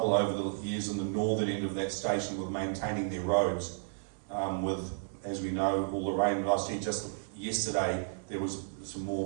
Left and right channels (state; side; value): silent; left; 56 dB below the other